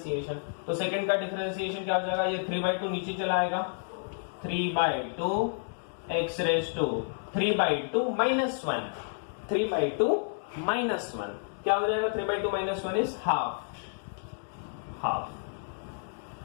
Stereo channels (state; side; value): silent; right; digital silence